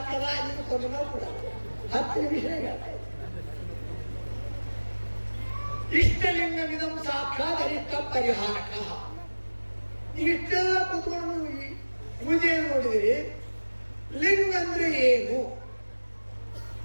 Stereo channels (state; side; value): inverted; both; correlation -1.00